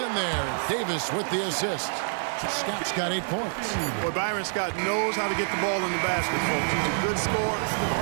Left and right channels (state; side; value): silent; left; digital silence